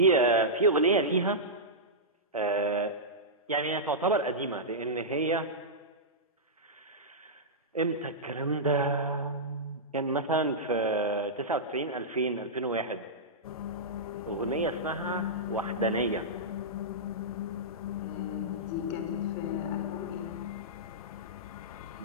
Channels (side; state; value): both; normal; correlation -0.13